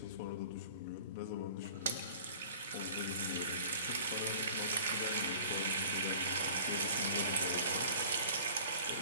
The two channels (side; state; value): both; inverted; correlation -0.46